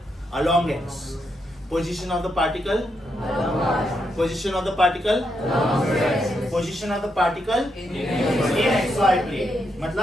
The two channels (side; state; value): both; normal; correlation 0.81